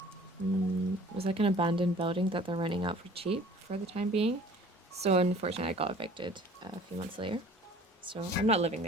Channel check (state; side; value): normal; both; correlation 0.49